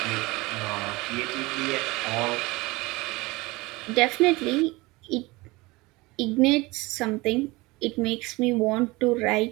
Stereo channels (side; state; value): left; quieter; 22.4 dB